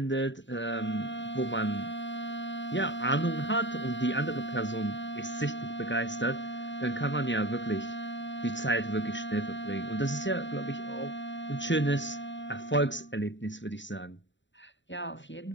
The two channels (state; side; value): late; right; 0.54 ms